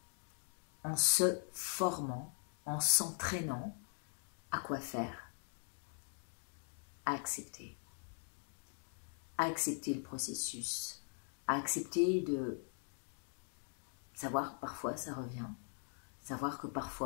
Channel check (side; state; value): right; silent; 50 dB below the other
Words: en se formant, en s'entraînant à quoi faire? À accepter le processus, à accepter de savoir que parfois ça revient, savoir que